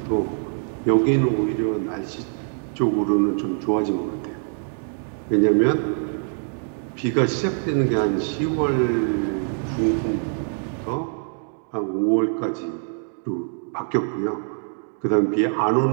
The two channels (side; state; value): left; silent; 56 dB below the other